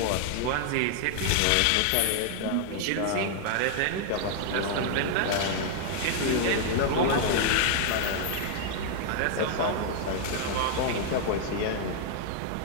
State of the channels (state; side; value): different; both; correlation 0.00